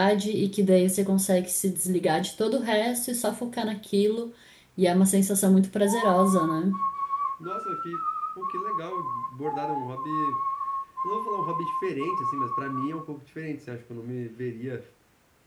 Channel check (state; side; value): identical; both; correlation 1.00